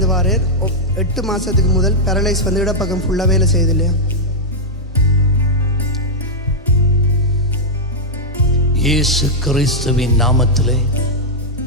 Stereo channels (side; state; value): both; normal; correlation -0.04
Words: வாரேர் 8 மாதத்துக்கு முதல் பேரலைஸ் வந்து இடப்பக்கம் ஃபுல்லாக வேலை செய்யுது இல்லையா? இயேசு கிறிஸ்துவின் நாமத்திலே